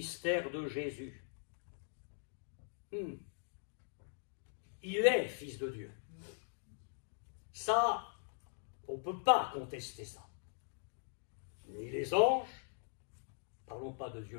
de Jésus. Il est Fils de Dieu. Ça, on ne peut pas contester ça. Ni les anges, parlons pas de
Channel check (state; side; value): silent; right; digital silence